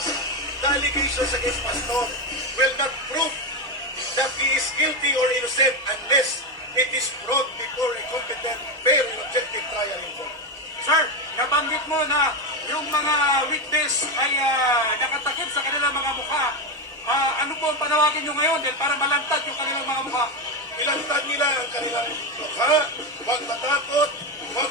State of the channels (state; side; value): normal; both; correlation 0.11